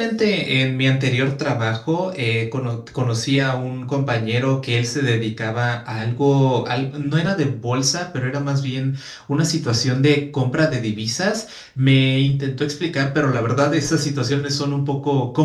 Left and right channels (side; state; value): both; identical; correlation 1.00